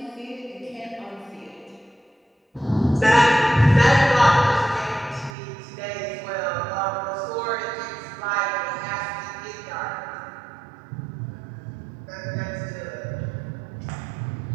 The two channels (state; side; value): drops out; left; at 5.4 s